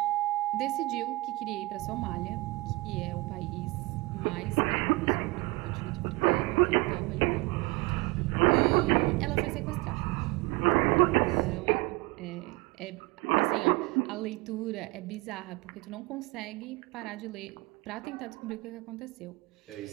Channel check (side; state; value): left; quieter; 22.8 dB